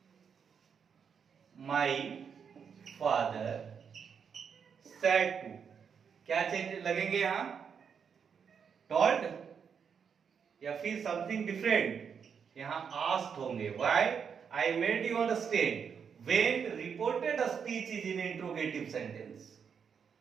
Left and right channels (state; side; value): quieter; left; 6.8 dB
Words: माई फादर सेड टू, क्या चेंज लगेंगे यहां? टोल्ड या फिर समथिंग डिफरेंट? यहां आस्क्ड होंगे। Why? I made you understand when reported speech is in interrogative sentence.